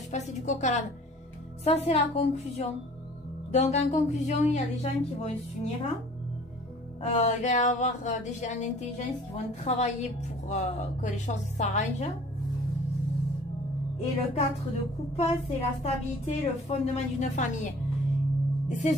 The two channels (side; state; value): both; normal; correlation 0.50